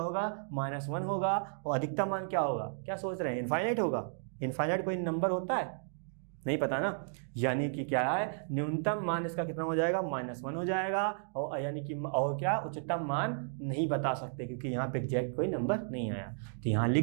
-1 होगा, और अधिकतम मान क्या होगा, क्या सोच रहे हैं, इनफाइनाइट होगा। इनफाइनाइट कोई नंबर होता है, नहीं पता ना, यानी कि क्या है, न्यूनतम मान इसका कितना हो जाएगा, -1 हो जाएगा, और यानी कि और क्या, उच्चतम मान नहीं बता सकते क्योंकि यहाँ पे एग्जैक्ट कोई नंबर नहीं आया, तो यहाँ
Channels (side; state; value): left; silent; digital silence